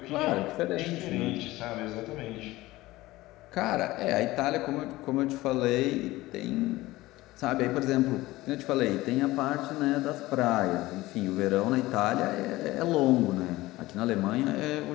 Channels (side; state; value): right; quieter; 18.4 dB